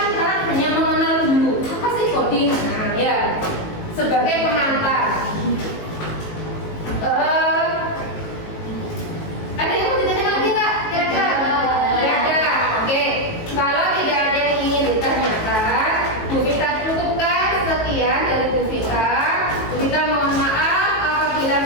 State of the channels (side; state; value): right; late; 19 ms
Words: sekarang hanya mengenal dulu apa sih coding. Nah ya, sebagai pengantar. Ada yang mau ditanyakan lagi nggak? Kira-kira? Tidak ada. Oke. Kalau tidak ada yang ingin ditanyakan, Bu Vita cukupkan sekian dari Bu Vita. Bu Vita mohon maaf apabila